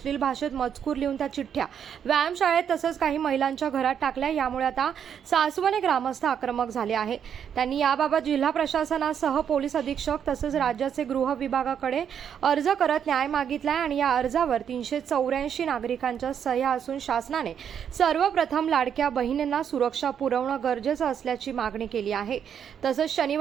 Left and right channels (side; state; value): left; quieter; 8.3 dB